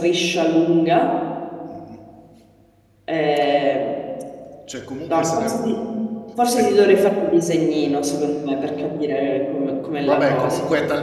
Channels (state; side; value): identical; both; correlation 1.00